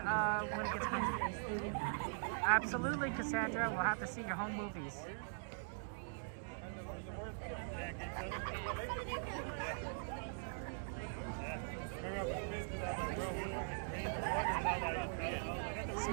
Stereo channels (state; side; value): silent; left; digital silence